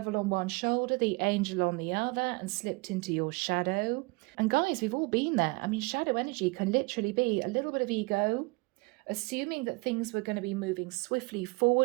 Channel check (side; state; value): left; quieter; 27.2 dB